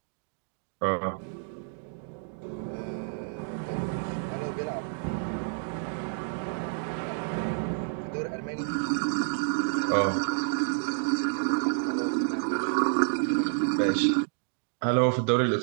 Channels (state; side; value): silent; left; digital silence